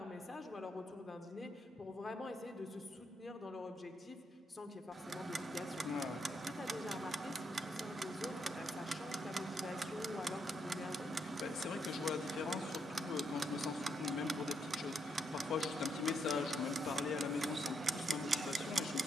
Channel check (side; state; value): both; normal; correlation 0.78